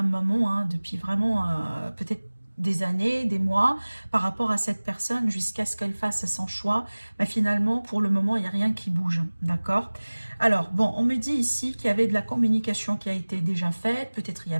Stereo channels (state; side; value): inverted; both; correlation -1.00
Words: moment, hein, depuis vraiment peut-être des années, des mois, par rapport à cette personne, jusqu'à ce qu'elle fasse son choix. Mais finalement, pour le moment, il n'y a rien qui bouge, d'accord? Alors, bon, on me dit ici qu'il y avait de la communication qui a été déjà faite, peut-être il y